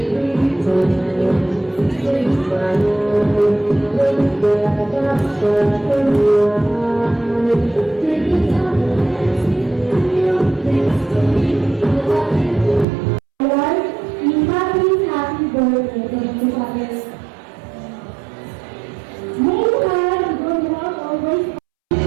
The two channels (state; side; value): drops out; left; at 12.9 s